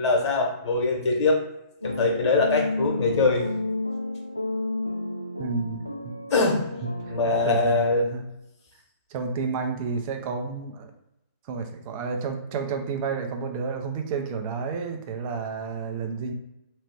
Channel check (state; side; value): inverted; both; correlation -0.45